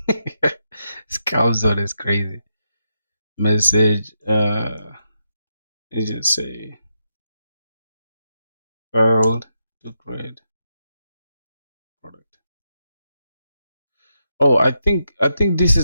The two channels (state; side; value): inverted; both; correlation -0.84